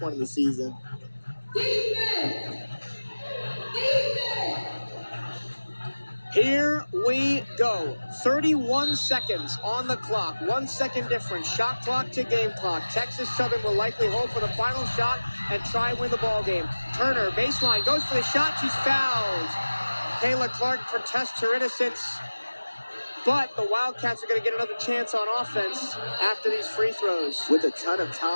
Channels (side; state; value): both; inverted; correlation -1.00